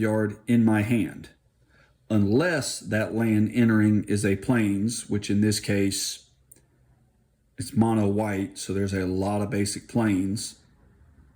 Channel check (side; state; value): both; identical; correlation 1.00